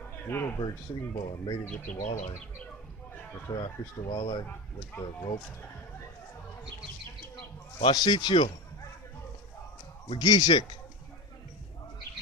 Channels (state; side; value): normal; both; correlation 0.22